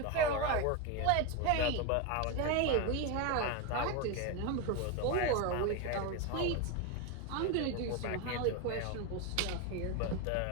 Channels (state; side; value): different; both; correlation 0.03